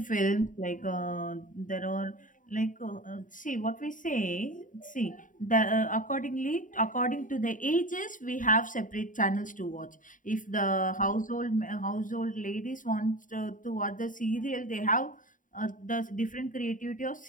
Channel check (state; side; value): late; right; 0.38 ms